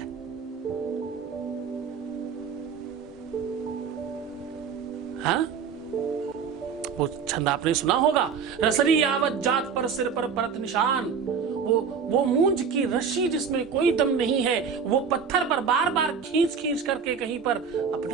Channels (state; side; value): quieter; left; 6.3 dB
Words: हाँ, वो छंद आपने सुना होगा, रसरी यावत जात पर सिर पर परत निशान। वो मूंज की रस्सी जिसमें कोई दम नहीं है, वो पत्थर पर बार बार खींच करके कहीं पर